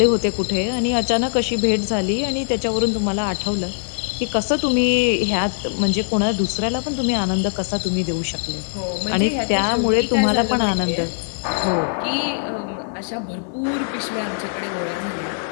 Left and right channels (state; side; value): silent; right; 65 dB below the other